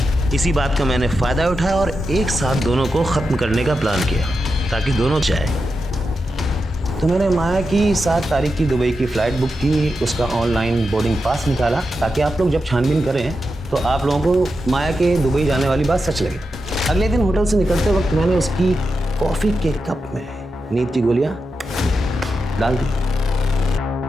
इसी बात का मैंने फ़ायदा उठाया और एक साथ दोनों को ख़त्म करने का प्लान किया ताकि दोनों जाए। तो मैंने माया की 7 तारीख की दुबई की फ़्लाइट बुक की, उसका ऑनलाइन बोर्डिंग पास निकाला ताकि आप लोग जब छानबीन करें तो आप लोगों को माया के दुबई जाने वाली बात सच लगे। अगले दिन होटल से निकलते वक्त मैंने उसकी कॉफ़ी के कप में नींद की गोलियाँ डाल दी।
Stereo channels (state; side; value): normal; both; correlation 0.88